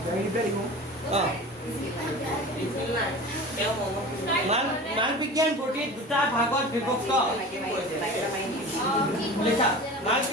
মালপিঘিয়ান বডি দুটা ভাগত বিভক্ত লিখা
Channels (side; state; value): both; normal; correlation 0.35